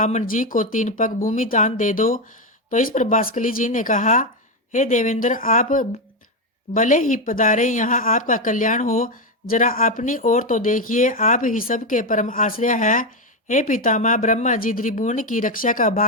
जी को 3 पग भूमि दान दे दो। तो इस पर बास्कली जी ने कहा, हे देवेंद्र, आप भले ही पधारे, यहाँ आपका कल्याण हो। जरा अपनी ओर तो देखिए, आप ही सबके परम आश्रय है। हे पितामह, ब्रह्मा जी त्रिभुवन की रक्षा का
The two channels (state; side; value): normal; both; correlation 0.09